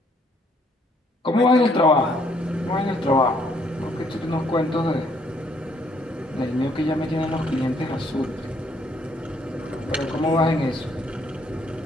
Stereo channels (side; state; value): both; normal; correlation 0.67